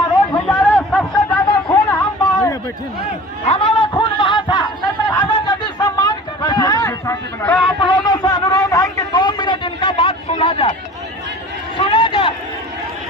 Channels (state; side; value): normal; both; correlation 0.41